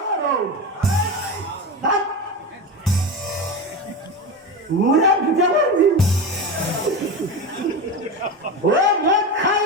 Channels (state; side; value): normal; both; correlation 0.21